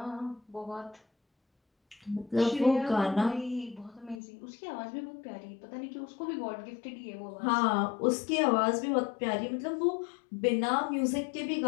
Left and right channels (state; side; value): drops out; right; at 4.2 s